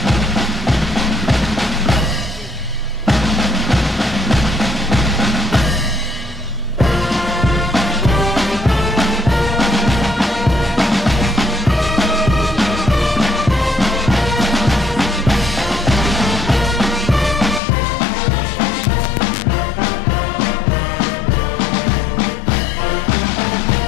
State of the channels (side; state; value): right; drops out; at 17.6 s